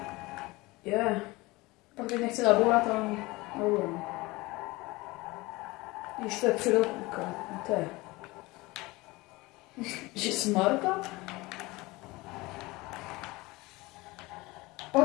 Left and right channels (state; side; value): quieter; right; 21.9 dB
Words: pak teď nechci zabourat, ale nebudu. Když to je předopůka, to je. Že smarta?